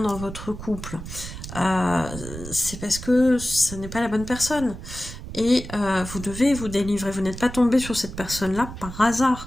votre couple, c'est parce que ce n'est pas la bonne personne. Et vous devez vous délivrer. Vous n'êtes pas tombé sur cette personne-là par hasard.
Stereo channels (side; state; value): right; noise; rumble, 11 dB below the sound